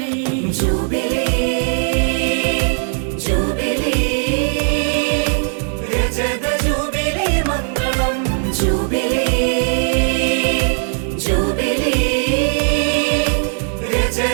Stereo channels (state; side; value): silent; left; 57 dB below the other